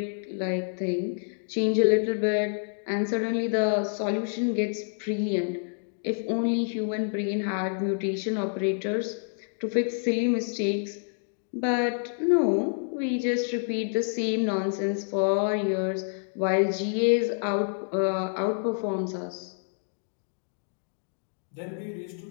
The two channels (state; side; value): silent; right; digital silence